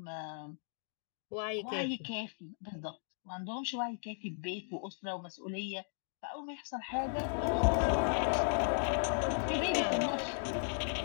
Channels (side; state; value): right; silent; digital silence